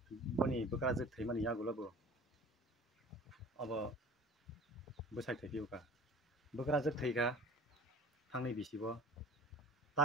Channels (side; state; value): both; normal; correlation 0.44